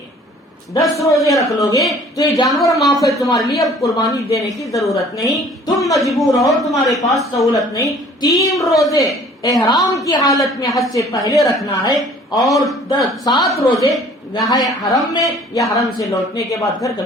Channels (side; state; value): both; normal; correlation 0.52